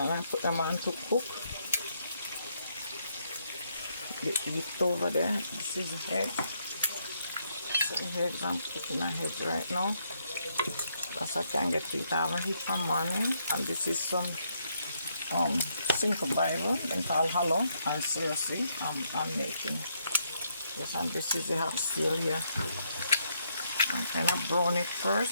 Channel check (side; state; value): both; inverted; correlation -0.75